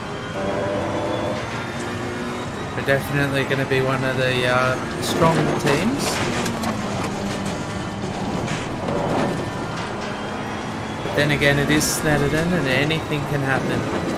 We're definitely going to be one of the stronger teams. But then again, it is Snetterton and anything can happen.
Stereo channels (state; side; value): identical; both; correlation 1.00